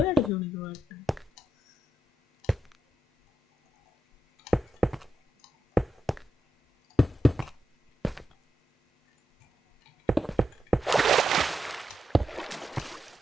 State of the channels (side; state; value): both; normal; correlation 0.86